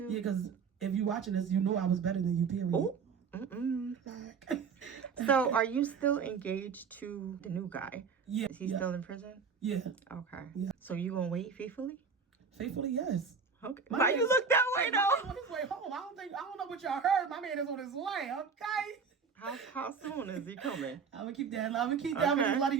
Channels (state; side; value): quieter; left; 5.8 dB